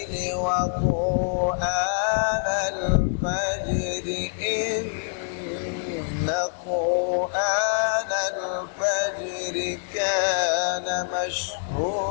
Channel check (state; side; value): silent; right; digital silence